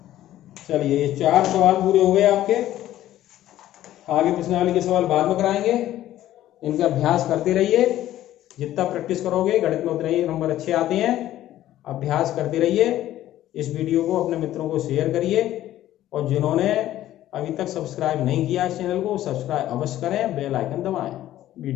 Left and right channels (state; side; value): quieter; right; 13.5 dB